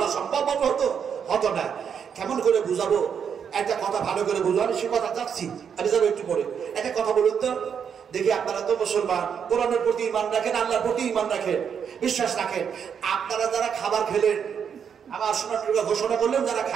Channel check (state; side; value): quieter; left; 7.4 dB